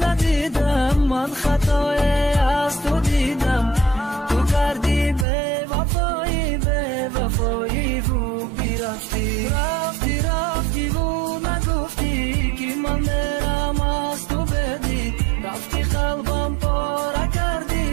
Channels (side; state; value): left; drops out; at 5.2 s